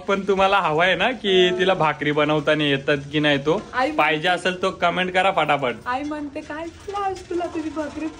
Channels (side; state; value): both; identical; correlation 1.00